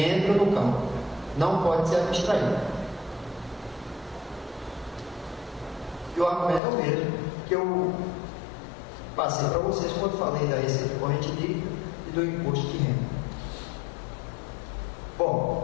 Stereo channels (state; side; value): drops out; right; at 6.6 s